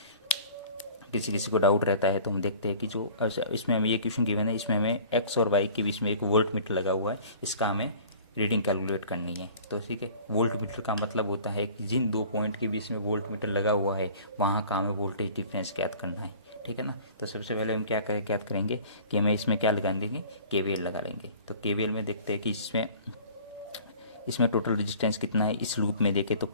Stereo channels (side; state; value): both; inverted; correlation -0.47